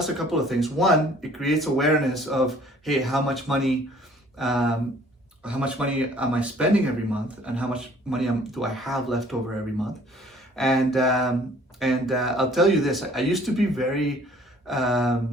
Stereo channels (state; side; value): normal; both; correlation 0.55